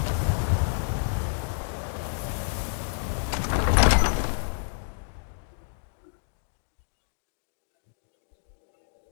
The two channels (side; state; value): right; silent; 59 dB below the other